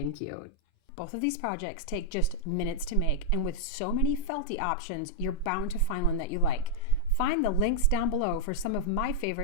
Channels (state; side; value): different; both; correlation -0.03